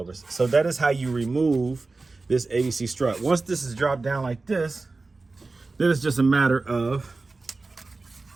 So that is how you remove this ABC strut. Once this is dropped down like this, then it's just a matter of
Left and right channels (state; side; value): quieter; left; 3.6 dB